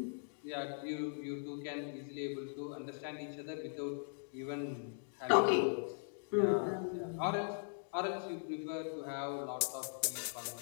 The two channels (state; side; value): silent; right; digital silence